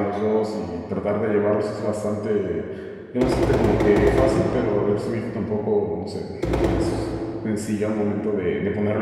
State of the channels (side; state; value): both; identical; correlation 1.00